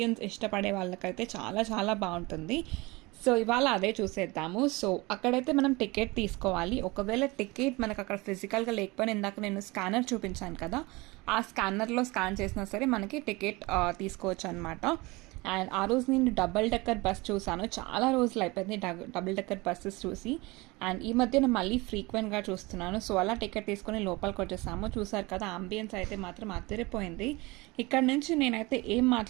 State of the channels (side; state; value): left; quieter; 23.6 dB